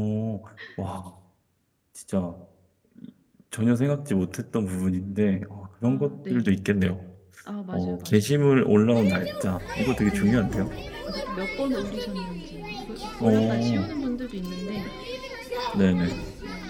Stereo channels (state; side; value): identical; both; correlation 1.00